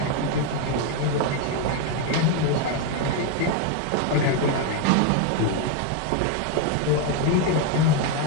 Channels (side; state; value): both; different; correlation 0.01